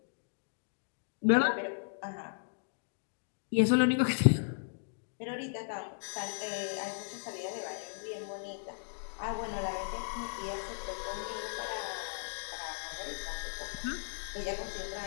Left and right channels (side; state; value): right; silent; digital silence